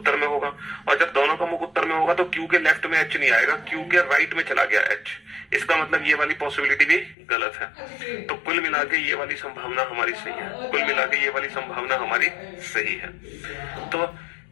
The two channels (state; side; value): drops out; right; at 7.2 s